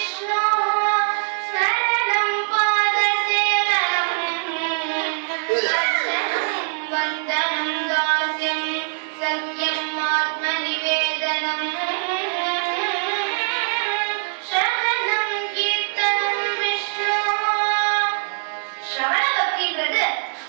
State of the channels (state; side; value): silent; left; digital silence